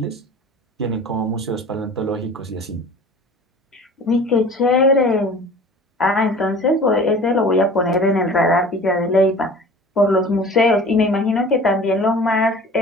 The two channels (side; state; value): both; normal; correlation 0.43